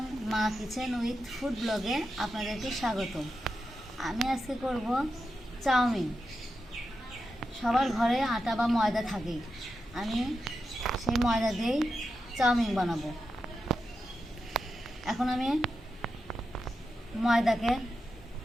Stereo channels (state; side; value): normal; both; correlation 0.88